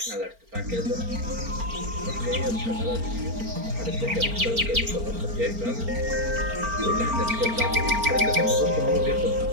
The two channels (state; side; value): late; left; 4.4 ms